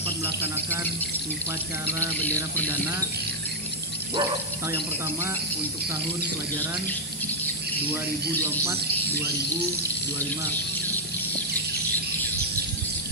melaksanakan upacara bendera perdana atau yang pertama untuk tahun pelajaran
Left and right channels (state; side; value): normal; both; correlation -0.04